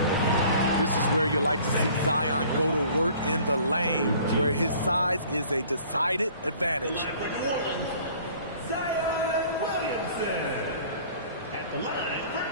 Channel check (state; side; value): inverted; both; correlation -0.52